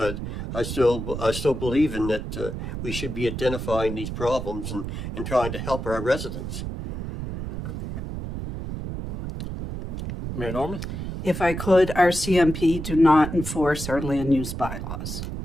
I still believe in that we should be identifying these problems and trying to help our residents. Mayor Norman? If I could, our CMP do not enforce our land use bylaws.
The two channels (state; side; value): noise; right; rumble, 6 dB below the sound